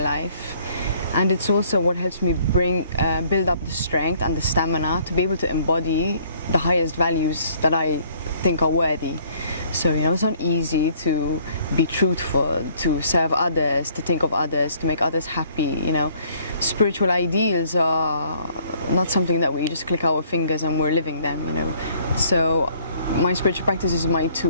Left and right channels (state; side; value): inverted; both; correlation -0.61